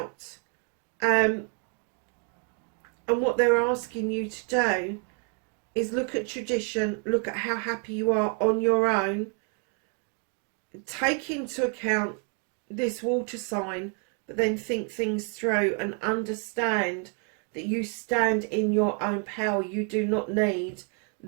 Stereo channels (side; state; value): left; quieter; 39.6 dB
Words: and what they're asking you to do is look at tradition, look at how happy you are on your own, take into account this water sign, but then think things through and understand that you stand in your own power. You do not need